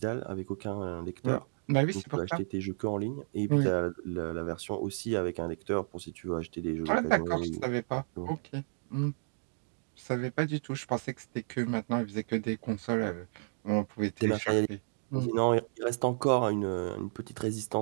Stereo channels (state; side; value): silent; left; digital silence